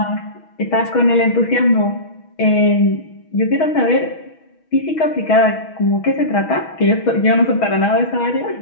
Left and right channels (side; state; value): right; late; 6.2 ms